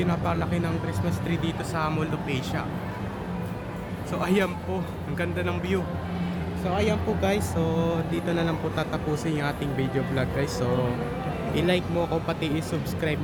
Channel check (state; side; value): identical; both; correlation 1.00